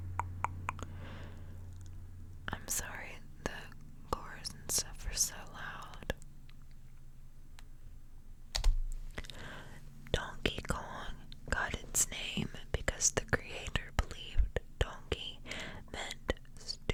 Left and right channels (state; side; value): identical; both; correlation 1.00